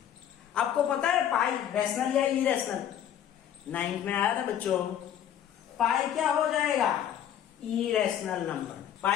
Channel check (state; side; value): quieter; right; 10.1 dB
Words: आपको पता है पाई रैशनल या इरेशनल? 9th में आया था बच्चों। पाई क्या हो जाएगा? Irrational number.